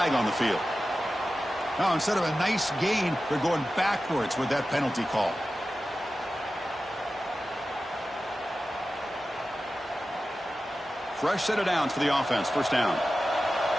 on the field. Now, instead of a nice gain, they're going backwards with that penalty call. Fresh set of downs for the offense. First down.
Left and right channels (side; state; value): both; normal; correlation 0.94